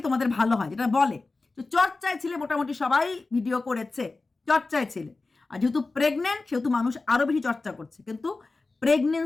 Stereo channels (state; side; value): quieter; right; 3.6 dB